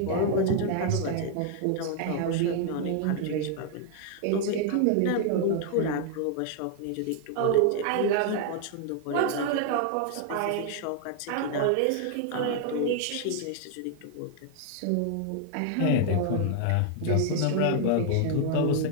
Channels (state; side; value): different; both; correlation 0.00